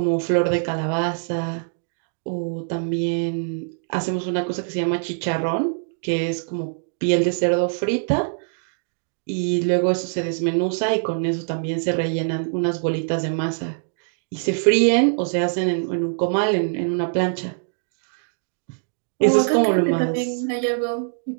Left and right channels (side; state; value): left; silent; digital silence